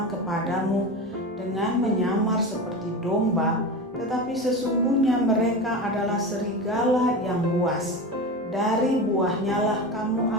kepadamu dengan menyamar seperti domba, tetapi sesungguhnya mereka adalah serigala yang buas. Dari buahnya lah kamu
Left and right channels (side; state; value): both; normal; correlation 0.25